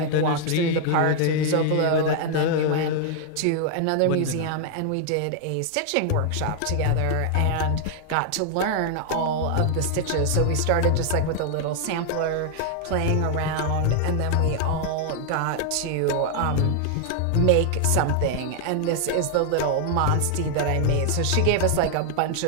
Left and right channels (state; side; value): different; both; correlation 0.00